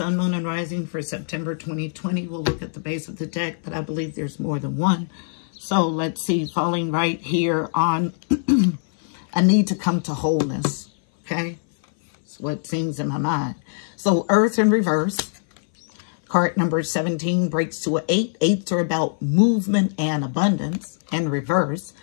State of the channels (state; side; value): silent; right; 59 dB below the other